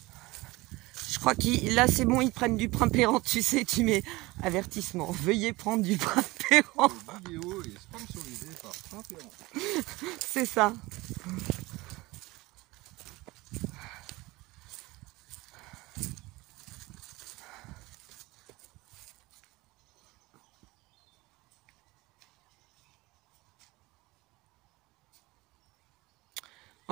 Je crois que là, c'est bon, ils prennent du primpérant, tu sais, tu mets avertissement. Veuillez prendre du primpérant. La vidéo est sponsorisée par Primpérant. C'est ça.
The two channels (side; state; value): left; quieter; 21.2 dB